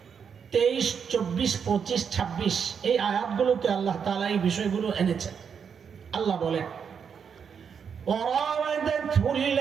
23, 24, 25, 26 এই আয়াতগুলোতে আল্লাহ তাআলা এই বিষয়গুলো এনেছেন। আল্লাহ বলেন, وراودته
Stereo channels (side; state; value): left; quieter; 6.9 dB